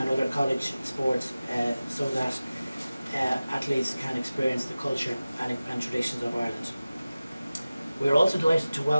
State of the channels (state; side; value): inverted; both; correlation -0.96